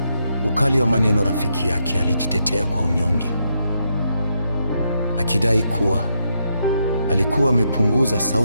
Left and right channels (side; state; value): both; inverted; correlation -0.80